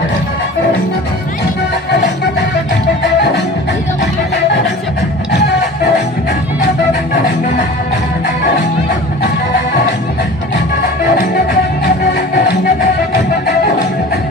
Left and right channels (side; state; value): both; normal; correlation 0.40